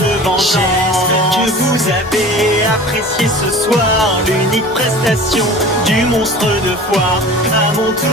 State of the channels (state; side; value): normal; both; correlation 0.40